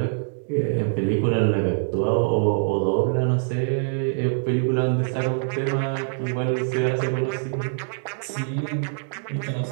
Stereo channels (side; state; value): left; silent; digital silence